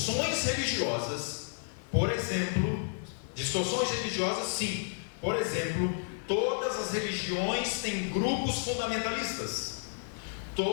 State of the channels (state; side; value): silent; right; digital silence